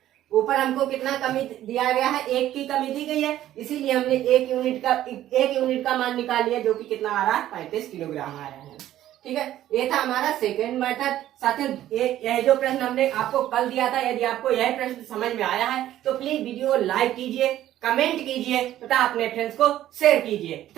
ऊपर हमको कितना कमी दिया गया है, 1 की कमी दी गई है, इसीलिए हमने 1 यूनिट का मान निकाल लिया, जो कि कितना आ रहा है, 35 किलोग्राम आ रहा है। ठीक है, ये था हमारा सेकेंड मेथड। साथियों, यह जो प्रश्न हमने आपको कल दिया था, यदि आपको यह प्रश्न समझ में आया है तो प्लीज वीडियो लाइक कीजिए, कमेंट कीजिए तथा अपने फ्रेंड्स को शेयर कीजिए।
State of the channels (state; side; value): quieter; left; 13.0 dB